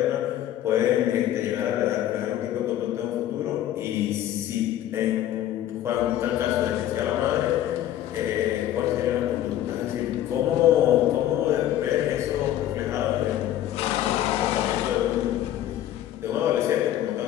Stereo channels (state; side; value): quieter; right; 12.3 dB